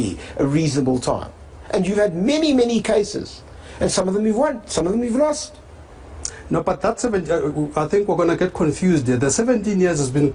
a reasonable time. And you've had many, many cases. And some of them you've won, some of them you've lost. No, but that's I think we're going to get confused there. The 17 years has been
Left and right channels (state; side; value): identical; both; correlation 1.00